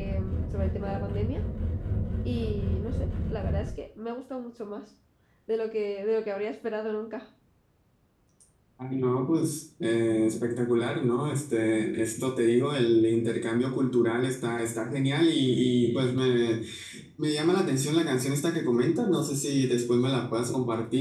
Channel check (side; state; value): both; identical; correlation 1.00